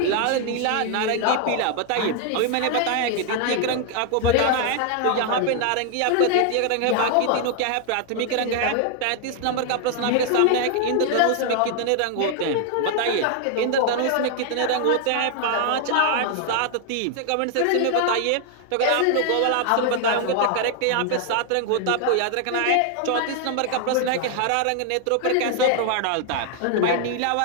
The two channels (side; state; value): both; different; correlation 0.00